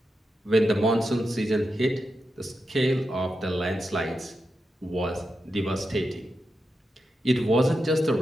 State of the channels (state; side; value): normal; both; correlation 0.88